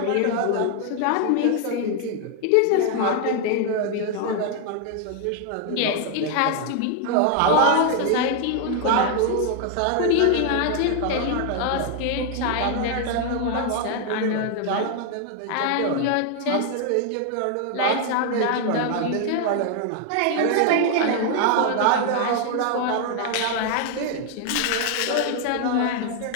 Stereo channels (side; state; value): both; different; correlation 0.00